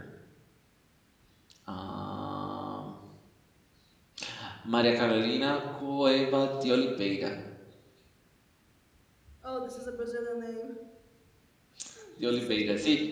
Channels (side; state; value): both; identical; correlation 1.00